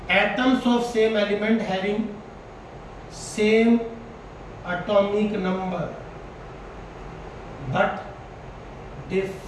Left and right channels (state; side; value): identical; both; correlation 1.00